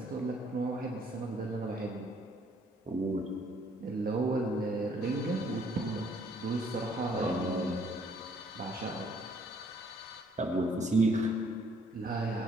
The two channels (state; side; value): normal; both; correlation 0.65